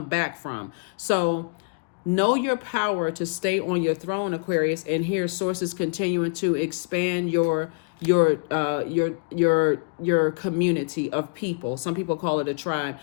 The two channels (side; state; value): right; quieter; 35.5 dB